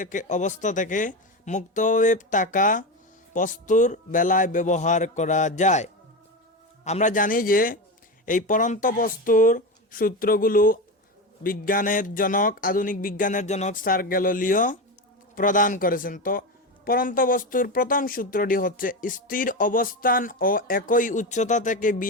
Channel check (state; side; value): normal; both; correlation 0.19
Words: অবস্থা থেকে মুক্তভাবে থাকা বস্তুর বেলায় ব্যবহার করা যায়। আমরা জানি যে এই পরন্ত বস্তুর সূত্রগুলো আধুনিক বিজ্ঞানের জনক স্যার গ্যালিলিও প্রদান করেছেন। তো পরন্ত বস্তুর প্রথম সূত্রটি হচ্ছে স্থির অবস্থান ও একই উচ্চতা থেকে